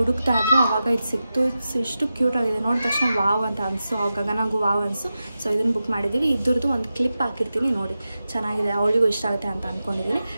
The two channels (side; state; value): both; inverted; correlation -0.92